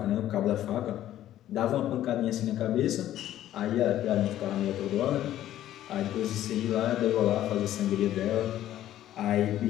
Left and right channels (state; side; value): quieter; right; 12.7 dB